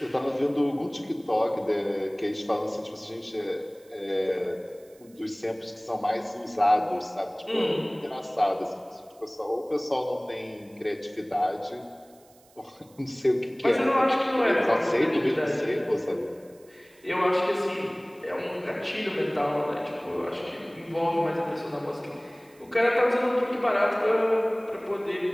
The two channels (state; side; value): noise; right; hiss, 29 dB below the sound